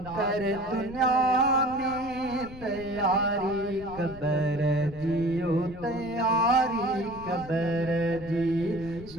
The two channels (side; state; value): left; noise; rumble, 16 dB below the sound